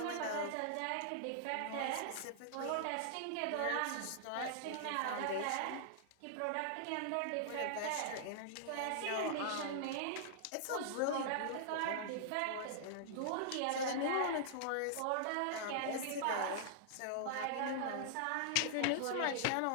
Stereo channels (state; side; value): different; both; correlation -0.02